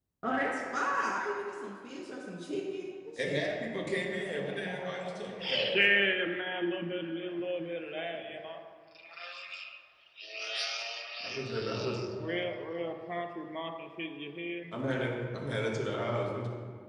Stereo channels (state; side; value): identical; both; correlation 1.00